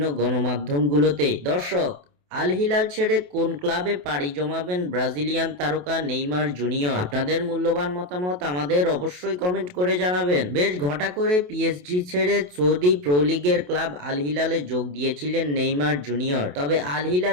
গণমাধ্যমগুলোতে। দর্শক, আল হিলাল ছেড়ে কোন ক্লাবে পাড়ি জমাবেন ব্রাজিলিয়ান তারকা নেইমার জুনিয়র? আপনাদের মূল্যবান মতামত আমাদের অবশ্যই কমেন্ট করে জানাবেন। বেশ ঘটা করে পিএসজি ছেড়ে সৌদি প্রো লিগের ক্লাব আল হিলালে যোগ দিয়েছিলেন নেইমার জুনিয়র। তবে আল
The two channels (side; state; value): left; late; 28 ms